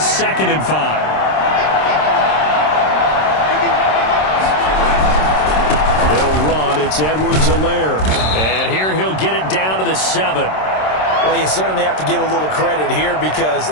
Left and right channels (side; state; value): right; late; 26 ms